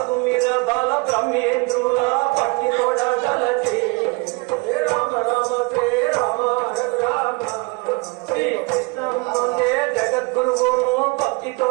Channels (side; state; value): left; quieter; 28.1 dB